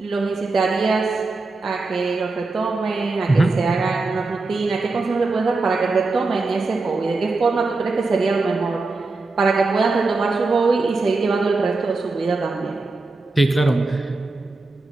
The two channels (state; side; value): quieter; left; 3.6 dB